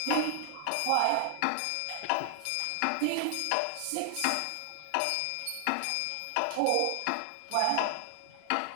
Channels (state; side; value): different; both; correlation 0.00